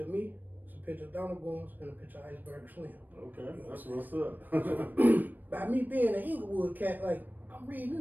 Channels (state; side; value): late; left; 0.089 ms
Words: of me, it's a picture of Donald Goines, and a picture of Iceberg Slim. Okay. That's what's up. By me being an Inglewood cat, like, I'm reading